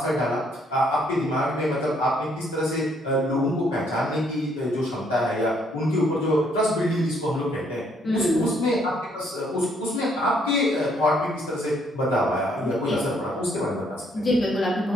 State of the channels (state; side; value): normal; both; correlation 0.68